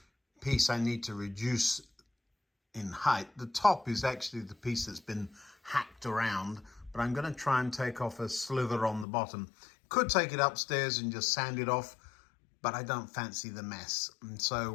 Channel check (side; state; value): right; drops out; at 9.1 s